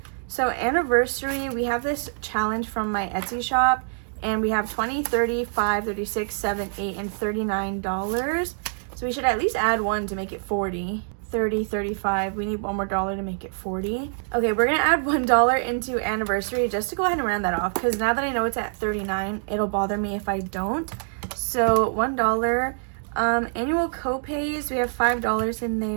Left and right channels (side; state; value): left; silent; digital silence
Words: So anniversary, we have this challenge from my Etsy shop. And we have $20, $30, $5, $36, $7, $8, and $39. So we should at least add 1 to make it 40. 30, 35. We need one more dollar to make it 40. Okay, we're gonna add $1 into anniversary just to go ahead and round that off, because now that I know it's at 39, it'll bother me if I don't. So $1. Annual co-pays, we have $5 in